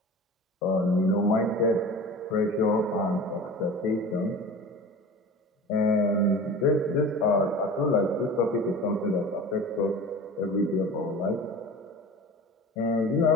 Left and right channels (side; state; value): both; normal; correlation 0.37